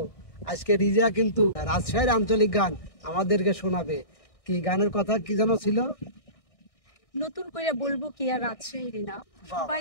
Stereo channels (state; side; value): late; right; 1.6 ms